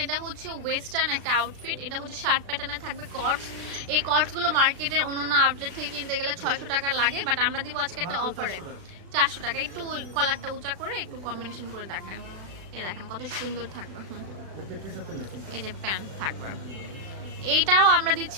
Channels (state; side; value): late; left; 36 ms